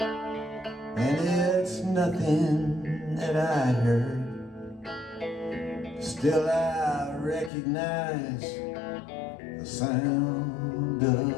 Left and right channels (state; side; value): drops out; right; at 7.5 s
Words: and it's nothing that I heard, still I recognize the sound